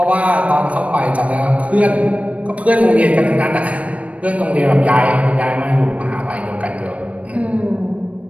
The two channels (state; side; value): late; left; 0.065 ms